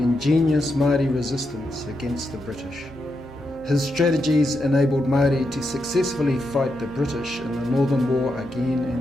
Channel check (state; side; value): noise; left; hum, 23 dB below the sound